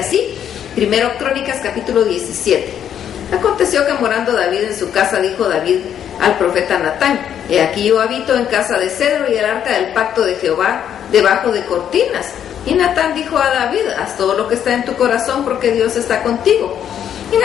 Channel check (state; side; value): quieter; right; 9.4 dB